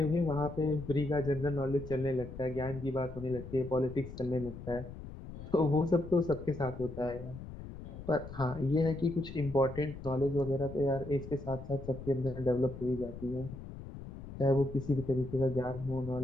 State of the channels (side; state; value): left; noise; rumble, 12 dB below the sound